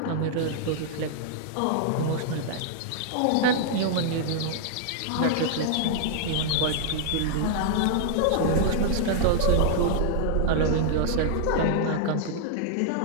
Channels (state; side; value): different; both; correlation -0.01